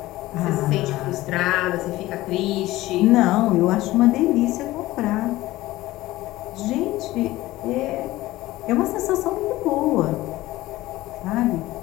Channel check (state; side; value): quieter; right; 17.4 dB